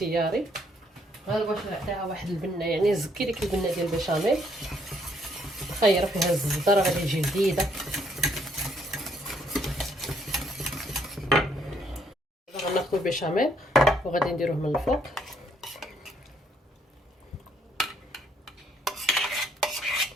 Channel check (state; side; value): normal; both; correlation 0.69